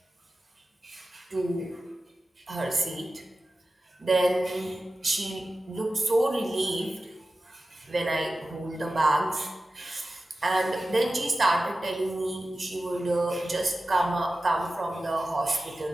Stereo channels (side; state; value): both; normal; correlation 0.94